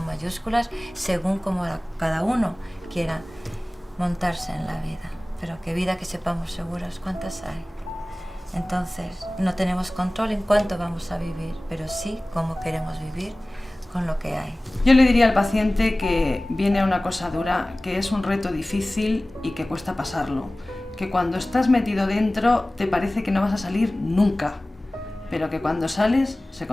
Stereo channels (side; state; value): both; normal; correlation 0.98